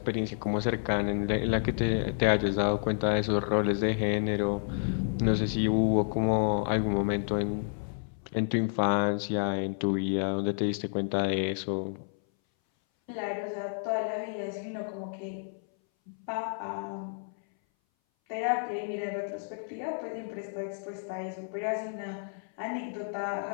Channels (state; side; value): silent; right; 58 dB below the other